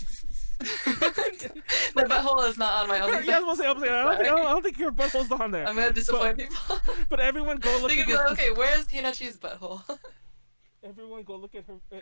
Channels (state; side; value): inverted; both; correlation -1.00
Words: My butthole is not on my OnlyFans. Yeah, I was gonna say, I don't think your butthole's on there. I'm gonna disappoint people. But everyone go look They at could be like, okay, where's Hinnachi's butthole? Everyone go look at her.